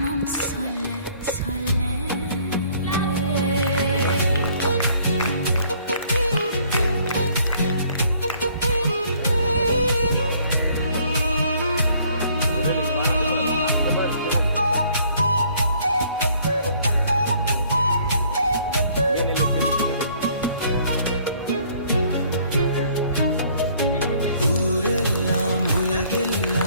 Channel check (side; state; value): both; inverted; correlation -0.61